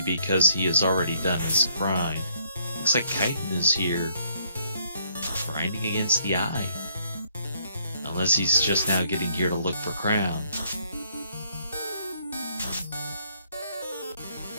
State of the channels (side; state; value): both; inverted; correlation -0.69